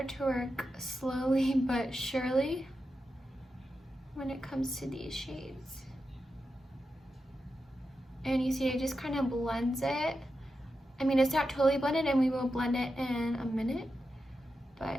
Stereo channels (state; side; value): normal; both; correlation 0.89